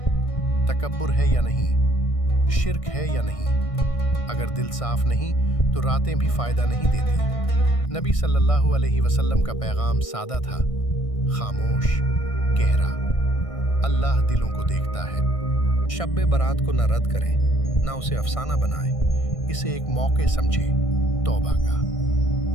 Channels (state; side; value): late; right; 1.6 ms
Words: تکبر ہے یا نہیں، شرک ہے یا نہیں۔ اگر دل صاف نہیں تو راتیں بھی فائدہ نہیں دیتی۔ نبی صلی اللہ علیہ وسلم کا پیغام سادہ تھا، خاموش، گہرا۔ اللہ دلوں کو دیکھتا ہے۔ شب برات کو نہ رد کریں، نہ اسے افسانہ بنائیں، اسے ایک موقع سمجھیں، توبہ کا،